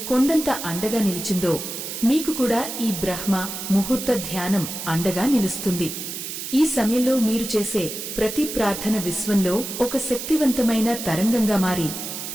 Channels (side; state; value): right; noise; hiss, 7 dB below the sound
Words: కొండంత అండగా నిలిచిందో మీకు కూడా ఈ బ్రహ్మ ముహూర్త ధ్యానం అండగా నిలుస్తుంది. ఈ సమయంలో మీరు చేసే ప్రతి ప్రార్థన విశ్వంలో ఒక శక్తివంతమైన తరంగంగా మారి